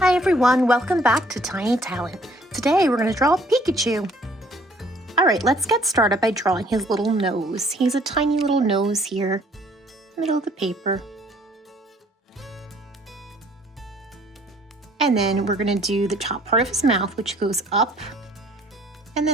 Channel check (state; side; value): normal; both; correlation 0.59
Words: everyone, welcome back to Tiny Talent. Today we're going to draw Pikachu. Alright, let's get started by drawing his little nose. He's a tiny little nose here, middle of the paper. And then we're going to do the top part of his mouth, which goes up and